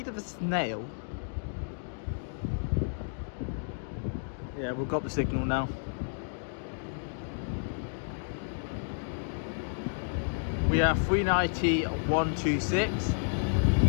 of a snail. Yeah, we've got the signal now. We have 390 126.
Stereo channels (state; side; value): silent; right; digital silence